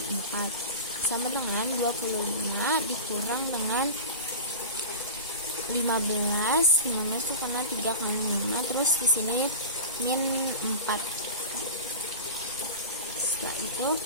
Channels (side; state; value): both; inverted; correlation -0.31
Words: 4 sama dengan 25 dikurang dengan 15 itu karena 3 kali 5, terus di sini min 4. Setelah itu